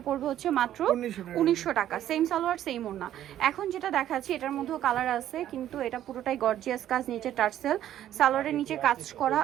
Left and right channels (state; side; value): quieter; left; 11.8 dB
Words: পড়বে হচ্ছে মাত্র 1900 টাকা। সেম সালোয়ার সেম ওড়না। এখন যেটা দেখাচ্ছি এটার মধ্যেও কালার আছে, কিন্তু এটা পুরোটাই গর্জিয়াস কাজ, নিচে টার্সেল, সালোয়ারের নিচে কাজ করা,